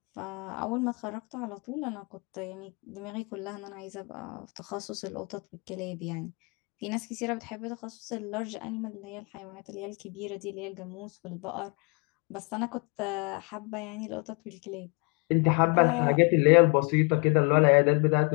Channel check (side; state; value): right; quieter; 32.2 dB